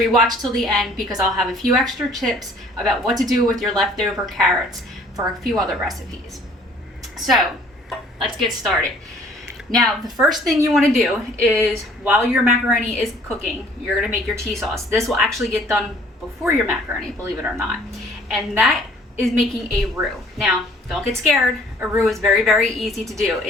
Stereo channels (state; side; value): normal; both; correlation 0.56